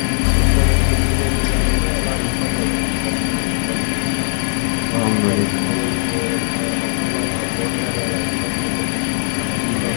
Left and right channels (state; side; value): silent; right; 67 dB below the other